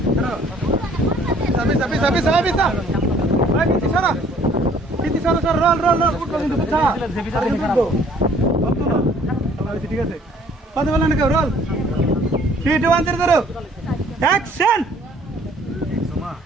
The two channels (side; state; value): both; normal; correlation 0.58